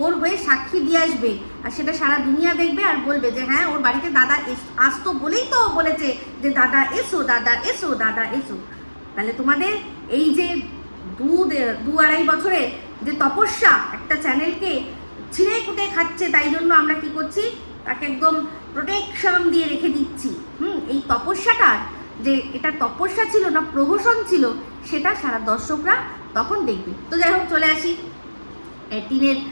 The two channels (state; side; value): inverted; both; correlation -1.00